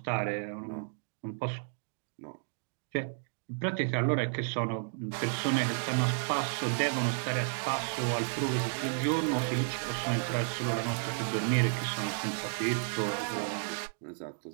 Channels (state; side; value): silent; left; digital silence